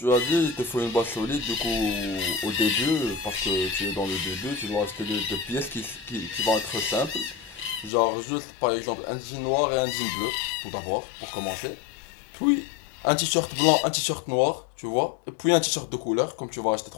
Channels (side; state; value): right; drops out; at 7.9 s